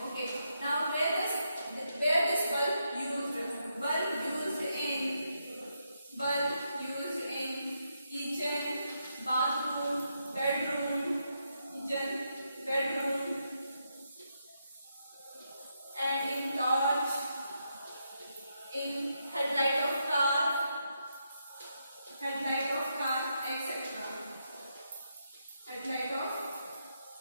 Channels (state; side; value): inverted; both; correlation -0.82